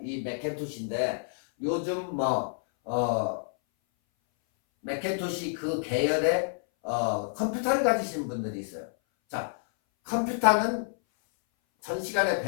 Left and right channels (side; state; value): right; silent; 59 dB below the other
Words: 이 맥킨토시인데 요즘 맥킨토시 그 계열의 컴퓨터를 가지신 분들이 있어요. 자, 컴퓨터는 전 시간에